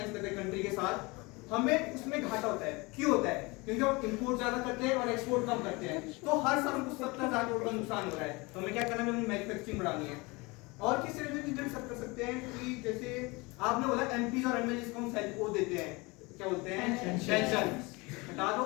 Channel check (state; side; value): quieter; right; 25.3 dB